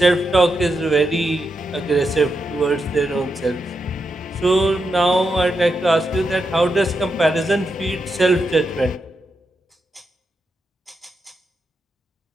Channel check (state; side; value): normal; both; correlation 0.85